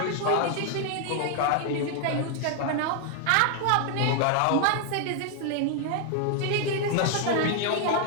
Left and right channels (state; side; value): different; both; correlation 0.00